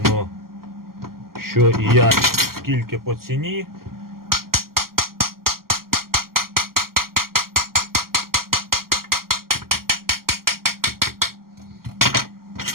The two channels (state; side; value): late; left; 0.92 ms